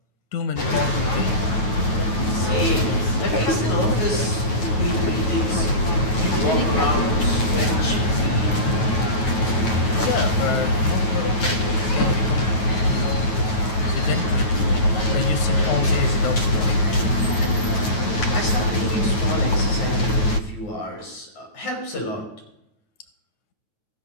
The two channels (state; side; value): late; right; 9.3 ms